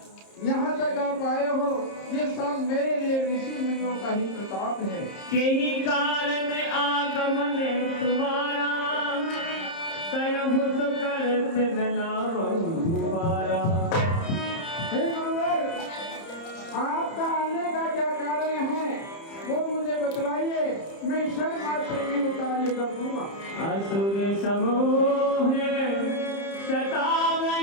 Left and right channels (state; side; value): late; right; 30 ms